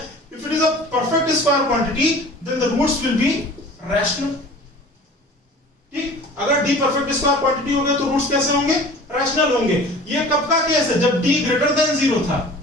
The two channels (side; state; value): both; normal; correlation 0.43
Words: if it is a perfect square quantity then the roots will be rational, ठीक। अगर d परफेक्ट स्क्वायर क्वांटिटी हो गया तो रूट्स कैसे होंगे, रैशनल होंगे। ये कब का केस है, जब d ग्रेटर देन 0 था,